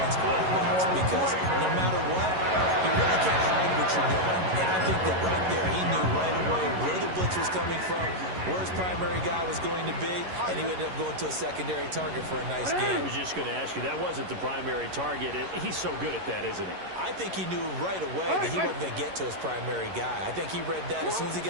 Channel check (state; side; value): late; left; 11 ms